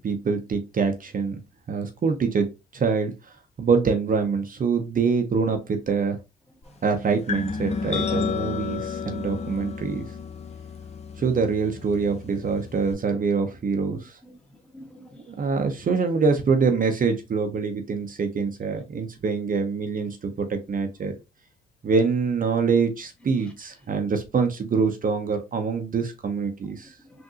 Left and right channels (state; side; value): quieter; left; 4.2 dB